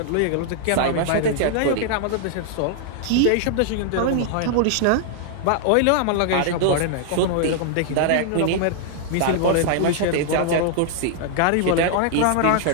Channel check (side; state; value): both; different; correlation 0.00